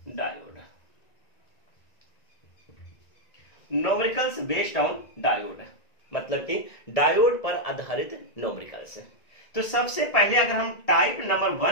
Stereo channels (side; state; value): right; late; 1.9 ms